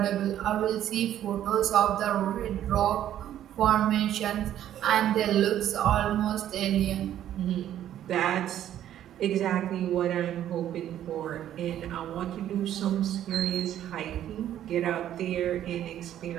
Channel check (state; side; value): quieter; left; 11.4 dB